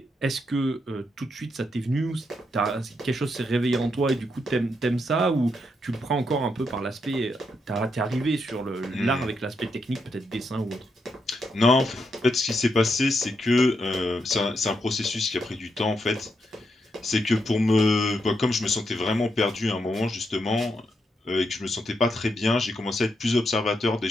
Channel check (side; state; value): both; normal; correlation 0.81